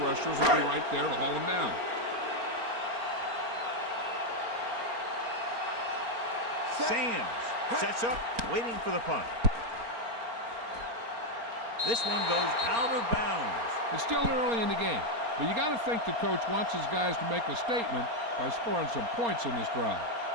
will be right there to haul him down. Sands sets up, waiting for the punt. This one goes out of bounds. It's still early in the game, but you got to think the coach wants his guys to make a statement by scoring some points in this drive.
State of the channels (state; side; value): late; left; 4.3 ms